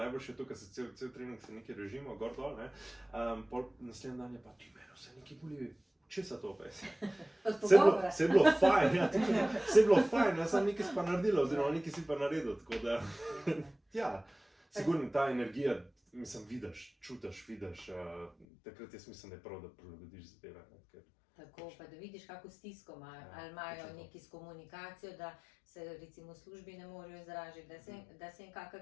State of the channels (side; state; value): right; drops out; at 18.4 s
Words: najboljše je to, ker se cel trening se nekaj režimo, gor dol, pol naslednji dan je pa ti meni vse nekaj boli. Česa to pa je? Vse je bilo fajn, vse je bilo fajn, jaz sem nekaj si pa naredila, oziroma nekaj si pa naredil, tako da, sigurno ta energija, mislim, vidiš, čutiš, takrat jaz mislim, da je prav, da prilagodiš zadeve. Tako, pa da vidiš, kako stisko imajo, ali imajo neki s komunikacijo, da se recimo v službi ne morejo izražiti, da se jim kakšna